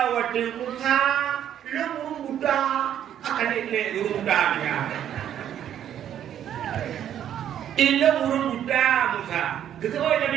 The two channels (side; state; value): left; quieter; 10.3 dB